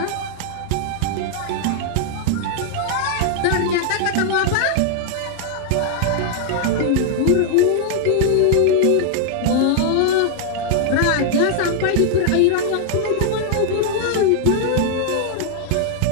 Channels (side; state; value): both; different; correlation 0.00